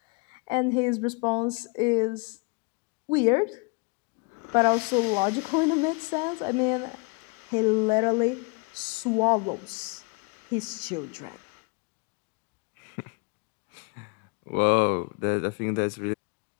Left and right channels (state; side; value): quieter; right; 30.5 dB